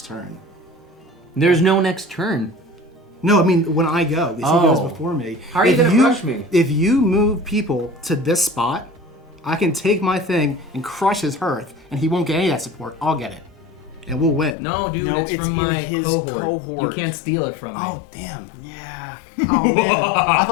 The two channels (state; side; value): drops out; right; at 14.6 s